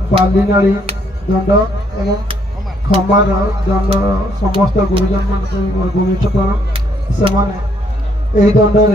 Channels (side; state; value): both; normal; correlation 0.69